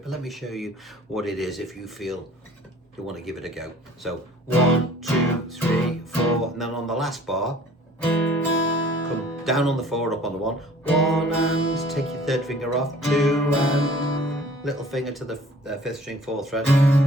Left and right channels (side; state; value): both; normal; correlation 0.51